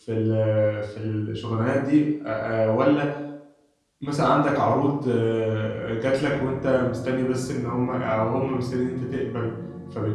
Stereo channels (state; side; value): identical; both; correlation 1.00